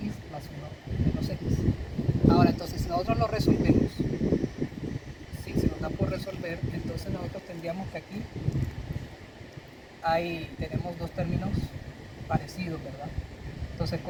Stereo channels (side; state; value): both; identical; correlation 1.00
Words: más 1 menos x. Ahora, entonces, si nosotros lo resolvemos, si se nos da por resolver, entonces nosotros tendríamos que aquí tenemos dos términos parecidos, ¿verdad? Entonces,